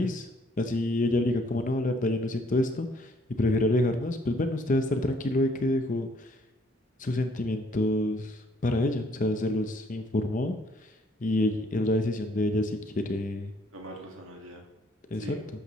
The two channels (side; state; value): both; normal; correlation 0.64